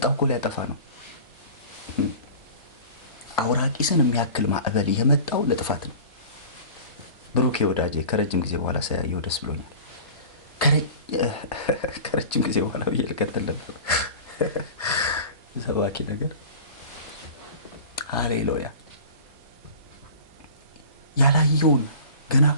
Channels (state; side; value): inverted; both; correlation -0.39